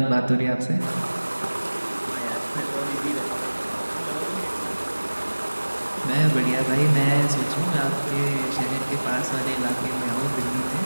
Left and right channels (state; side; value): inverted; both; correlation -1.00